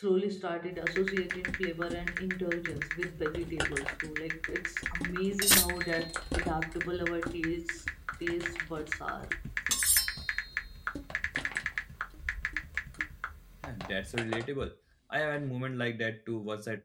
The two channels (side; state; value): both; identical; correlation 1.00